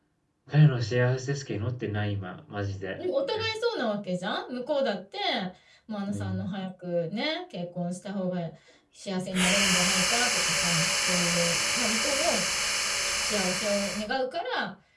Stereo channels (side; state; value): both; identical; correlation 1.00